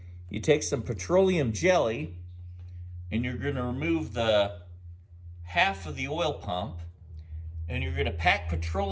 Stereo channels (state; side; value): identical; both; correlation 1.00